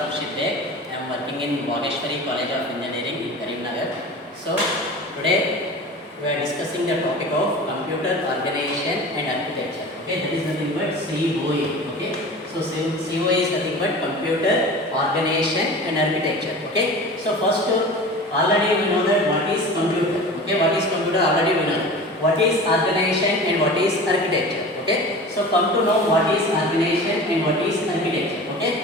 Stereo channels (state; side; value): normal; both; correlation 0.36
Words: I am working in Vaageswari College of Engineering in Karimnagar. So today we are discussing the topic of computer organization and architecture. Okay, that is nothing but COE. Okay, so COE is nothing but computer organization and architecture. Okay, so first already we know that what is computer. Okay, what is computer already we know. What is organization and what is architecture. Okay, so come to know what is organization and what is architecture.